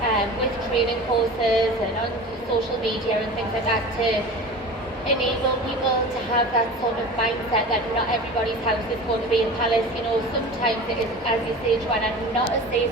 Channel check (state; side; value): normal; both; correlation 0.35